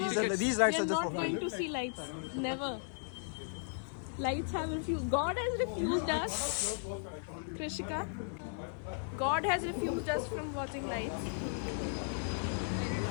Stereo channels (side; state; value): right; silent; 54 dB below the other